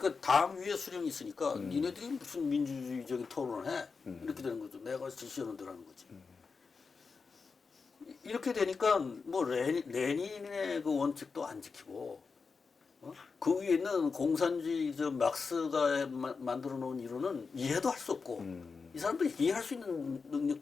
당 위에 수령이 있으니까 니네들이 무슨 민주주의적인 토론을 해? 이렇게 되는 거죠. 내가 지시하는 대로 하는 거지. 이렇게 되니까 뭐 레닌의 그 원칙도 안 지키고 그 위에 있는 공산주의 막스가 만들어 놓은 이론은 이해도 할 수 없고 이 사람들 이해할 수 있는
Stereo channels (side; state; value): right; quieter; 4.9 dB